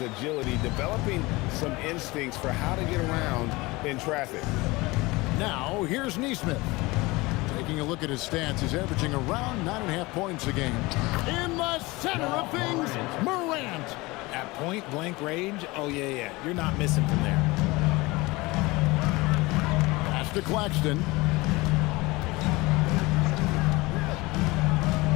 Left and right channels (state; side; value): quieter; right; 22.4 dB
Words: agility, developing some instincts for how to get around in traffic. Now, here's Nesmith. Taking a look at his stats, he's averaging around 9.5 points a game. In the center of things, Morant. At point-blank range, oh, yeah. You're not missing from there. Pass to Claxton.